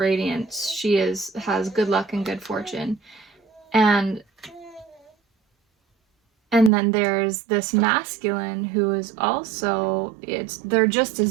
She has good luck and good fortune. And then there's this masculine who is also, they're just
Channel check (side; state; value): left; drops out; at 6.7 s